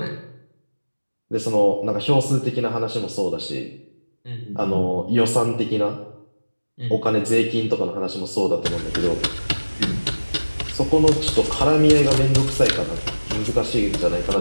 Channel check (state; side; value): inverted; both; correlation -1.00